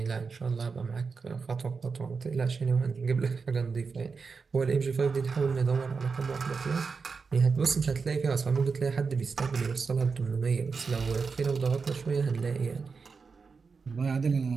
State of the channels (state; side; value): quieter; left; 5.0 dB